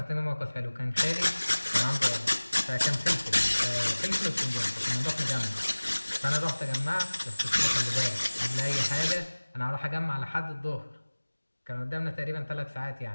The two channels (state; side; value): inverted; both; correlation -1.00